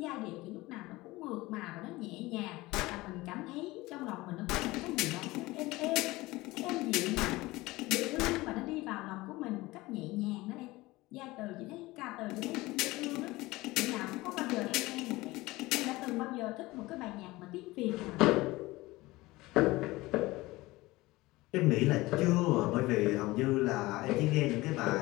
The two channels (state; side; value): quieter; right; 20.1 dB